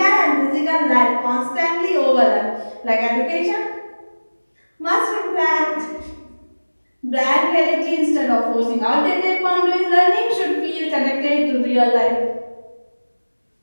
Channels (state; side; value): inverted; both; correlation -1.00